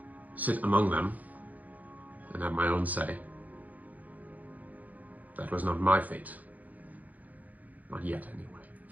sit among them and have my own say. That was not my fate. Not yet, anyway.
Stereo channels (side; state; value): left; late; 0.079 ms